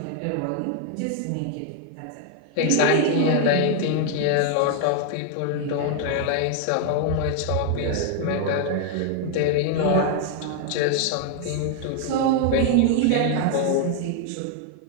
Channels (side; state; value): both; different; correlation 0.00